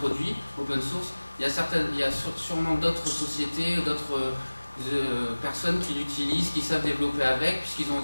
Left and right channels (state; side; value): inverted; both; correlation -1.00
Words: produit open source, il y a sûrement d'autres sociétés, d'autres personnes qui l'utilisent, qui savent développer avec, puisqu'ils ont